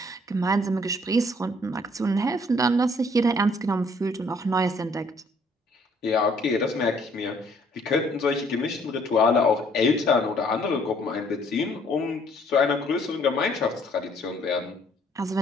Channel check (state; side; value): normal; both; correlation 0.62